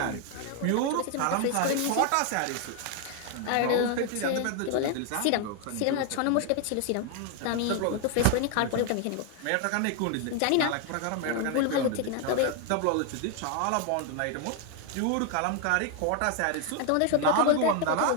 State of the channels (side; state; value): both; different; correlation 0.01